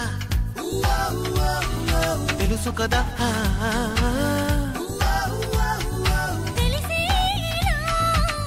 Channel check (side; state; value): both; identical; correlation 1.00